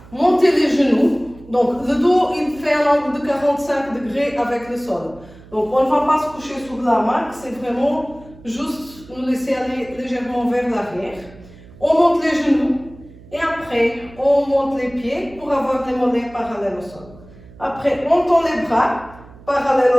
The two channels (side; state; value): right; noise; hum, 21 dB below the sound